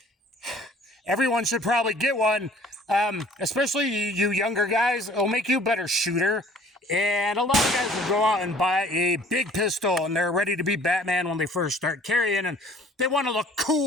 everyone should probably get one, especially you younger guys. It'll make you a better shooter. And a lot of guys will go out and buy a big pistol, and they're ready to be Batman when they first start carrying, and they want to look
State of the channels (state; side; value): normal; both; correlation 0.53